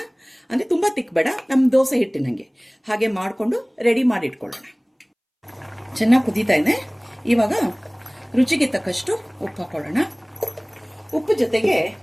ಅಂದರೆ ತುಂಬ ತಿಕ್ ಬೇಡ, ನಮ್ಮ ದೋಸೆ ಹಿಟ್ಟಿನಂಗೆ ಹಾಗೆ ಮಾಡಿಕೊಂಡು ರೆಡಿ ಮಾಡಿ ಇಟ್ಕೊಳ್ಳೋಣ. ಚೆನ್ನಾಗಿ ಕುದೀತಾ ಇದೆ. ಇವಾಗ ರುಚಿಗೆ ತಕ್ಕಷ್ಟು ಉಪ್ಪು ಹಾಕೊಳ್ಳೋಣ. ಉಪ್ಪು ಜೊತೆಗೆ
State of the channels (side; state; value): both; identical; correlation 1.00